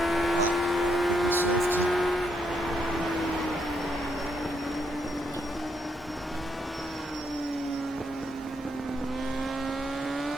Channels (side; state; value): both; normal; correlation 0.77